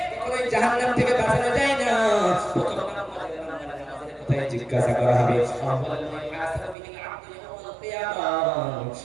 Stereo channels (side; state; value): left; drops out; at 6.8 s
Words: কখনোই জাহান্নাম থেকে বাঁচানো যায় না প্রথম নামাজের কথাই জিজ্ঞাসা করা হবে